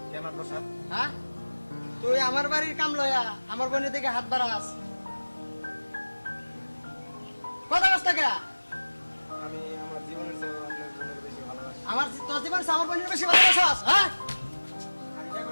কেমন প্রসাদ? হ্যাঁ, তুই আমার বাড়ির কাম লয়া আমার বোনের দিকে হাত বাড়াস, কথা কষ্ট কে? আমি আমার জীবনের চেয়ে আপনার বোনের বেশি ভালোবাসি। আমার তোর জীবন আমার বোনের বেশি ভালোবাসas, হ্যাঁ?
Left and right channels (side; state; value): both; inverted; correlation -1.00